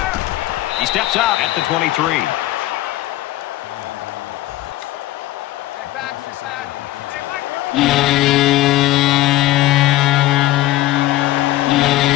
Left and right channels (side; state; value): right; quieter; 16.3 dB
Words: He steps out at the 23.